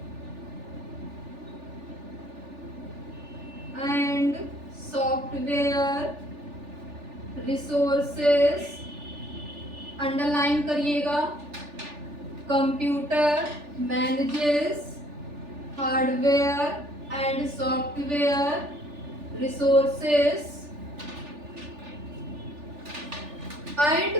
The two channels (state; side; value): late; left; 3.4 ms